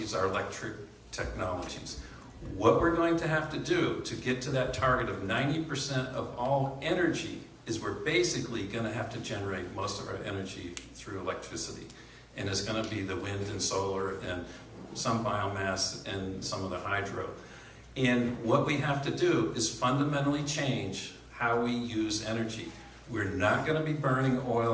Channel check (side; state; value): both; identical; correlation 1.00